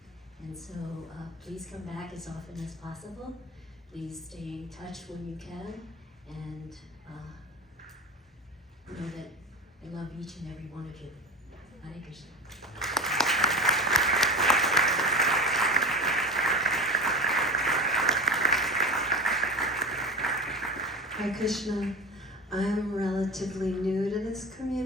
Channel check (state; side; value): normal; both; correlation 0.28